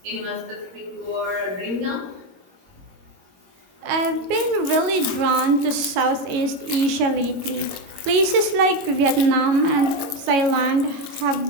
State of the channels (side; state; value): left; late; 21 ms